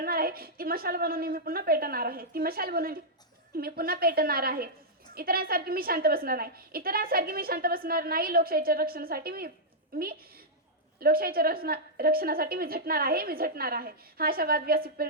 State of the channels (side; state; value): both; normal; correlation -0.08